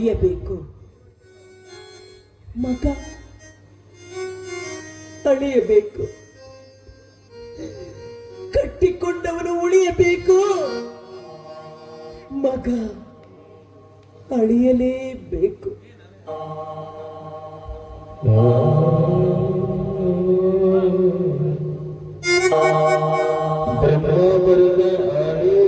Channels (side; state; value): both; identical; correlation 1.00